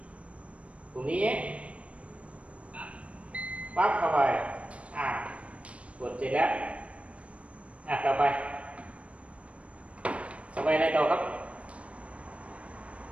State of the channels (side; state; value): left; late; 0.063 ms